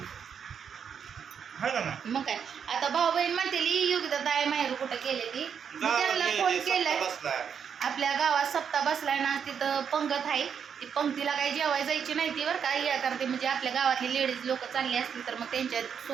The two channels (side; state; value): left; quieter; 7.4 dB